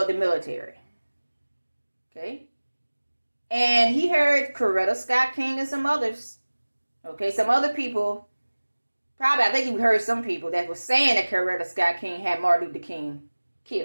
the military. Okay. And he heard Coretta Scott King and some others. Okay, some other people. Probably, I think he heard some people that was saying that Coretta Scott King had Martin Luther King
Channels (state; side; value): inverted; both; correlation -1.00